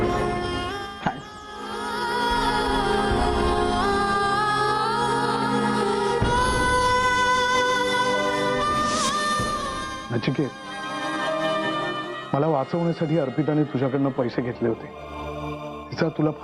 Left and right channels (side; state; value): both; identical; correlation 1.00